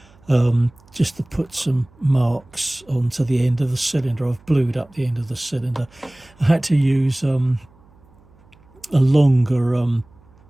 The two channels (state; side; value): noise; right; hum, 29 dB below the sound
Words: just to put some marks onto the end of the cylinder. I've blued up the end of the cylinder. I had to use a longer